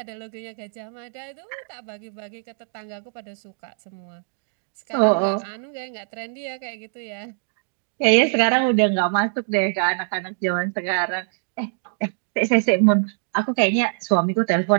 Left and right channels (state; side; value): silent; left; digital silence